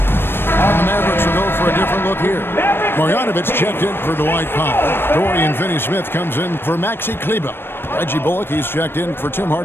It's checked in for Dwight Powell. Dorian Finney-Smith comes in for Maxi Kleber. Reggie Bullock, he's checked in for Tim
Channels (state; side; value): late; right; 0.10 ms